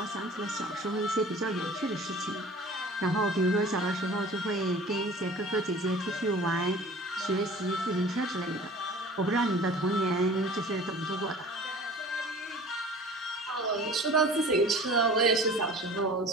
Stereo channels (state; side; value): normal; both; correlation 0.44